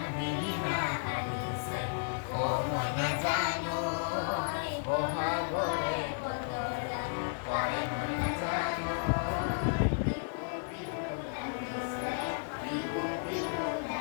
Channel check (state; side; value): silent; right; 56 dB below the other